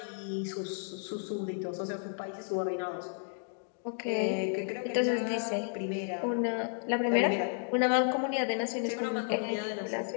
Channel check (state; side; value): silent; right; 56 dB below the other